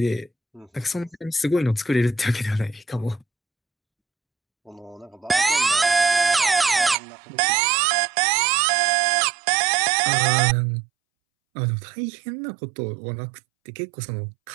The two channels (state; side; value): drops out; left; at 7.0 s